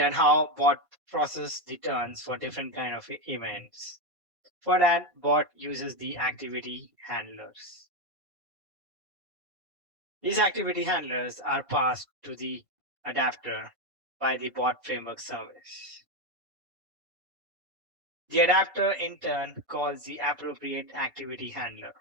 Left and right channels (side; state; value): left; late; 1.5 ms